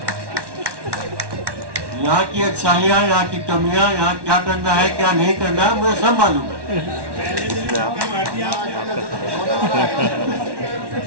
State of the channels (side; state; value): left; late; 1.1 ms